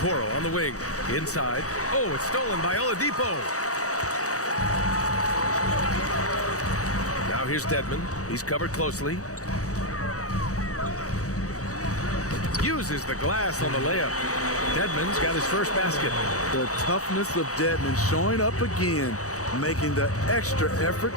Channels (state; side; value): late; right; 0.66 ms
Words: on the wing. Inside. Oh, it's stolen by Oladipo. Now here's Dedmon. He's covered closely. Uses the glass on the layup. Dedmon's got his first basket. The toughness of Dedmon showing up again, making the extra effort